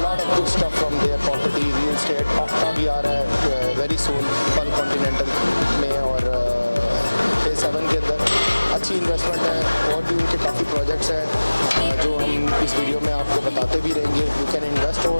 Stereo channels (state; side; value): inverted; both; correlation -1.00